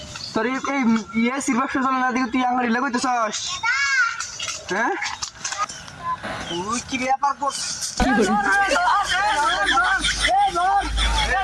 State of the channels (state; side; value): identical; both; correlation 1.00